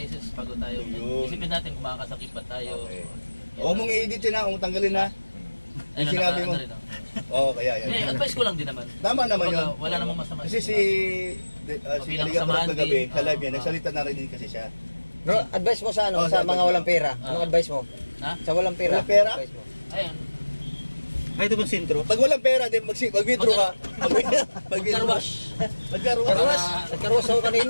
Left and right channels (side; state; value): both; inverted; correlation -1.00